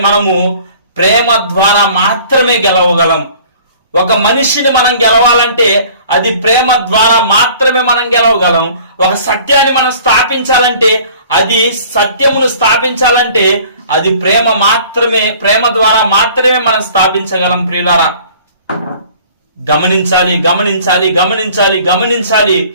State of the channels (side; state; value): both; inverted; correlation -0.51